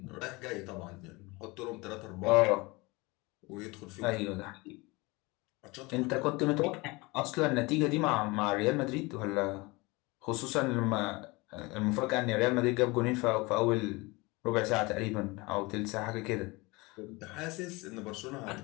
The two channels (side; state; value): right; quieter; 24.4 dB